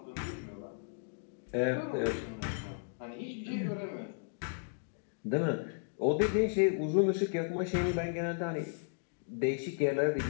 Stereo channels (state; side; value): silent; right; digital silence